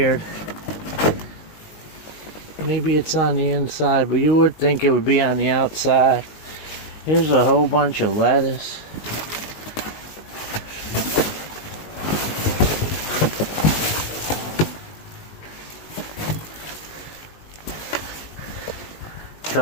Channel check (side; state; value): right; late; 19 ms